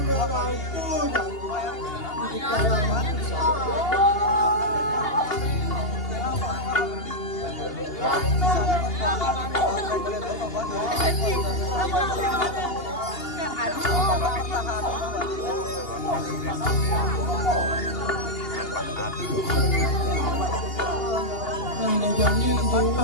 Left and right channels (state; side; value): late; right; 2.8 ms